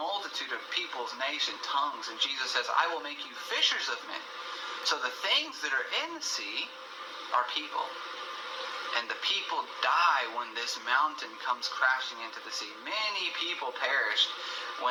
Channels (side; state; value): both; identical; correlation 1.00